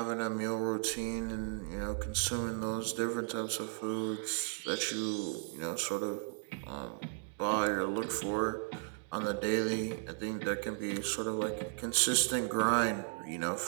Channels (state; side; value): silent; left; digital silence